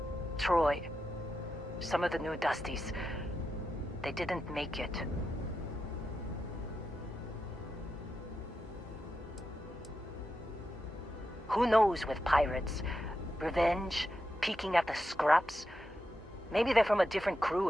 Troy, some of the new Dusties, they didn't make it. Who knows with pirates? Revenge? Peeking at the scraps? Maybe they're from a different crew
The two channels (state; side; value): normal; both; correlation 0.88